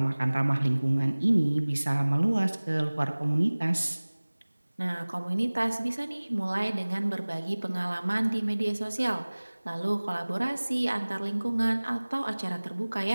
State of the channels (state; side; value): inverted; both; correlation -1.00